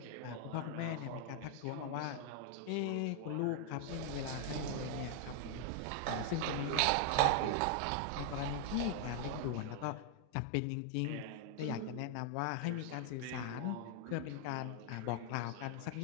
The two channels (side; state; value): both; different; correlation 0.00